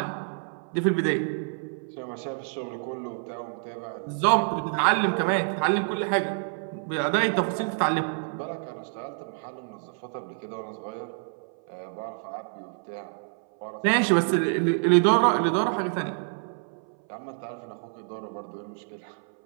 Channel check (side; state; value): left; silent; 60 dB below the other